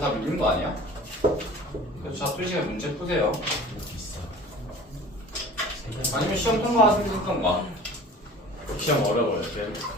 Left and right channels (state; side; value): normal; both; correlation 0.43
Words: 밀린 거 아니야? 그래서 자, 2시간 문제 푸세요. 아니면 시험 통과하시면 됐던가. 시험 어려워요.